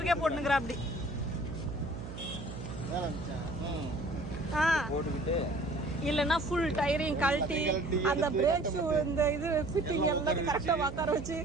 போட்டுக்கிறா அப்படி. போட்டுக்கிட்டு இல்லைன்னா ஃபுல் டயரையும் கழட்டி அந்த பிரேக் ஷூ இந்த இது ஃபிட்டிங் எல்லாம் கரெக்டா உட்கார வச்சு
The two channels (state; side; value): noise; right; hum, 9 dB below the sound